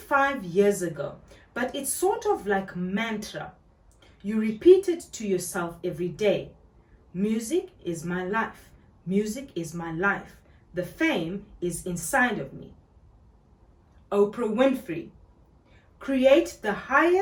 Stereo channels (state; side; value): identical; both; correlation 1.00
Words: years ago, but it's sort of like mantra. You repeat it to yourself every day. Music is my life. Music is my life. The fame is inside of me. Oprah Winfrey. Create the